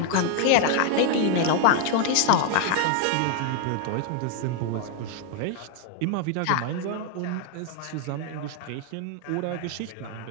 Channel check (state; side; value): different; both; correlation 0.00